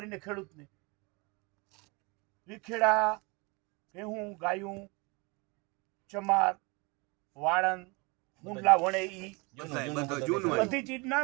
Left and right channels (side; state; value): left; quieter; 28.3 dB